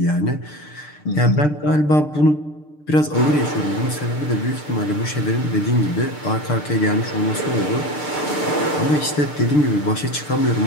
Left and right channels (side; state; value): right; late; 6.7 ms